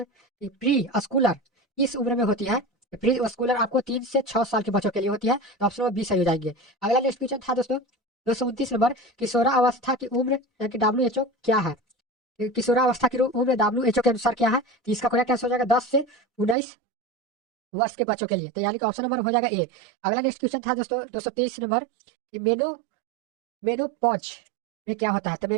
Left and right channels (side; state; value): left; drops out; at 16.6 s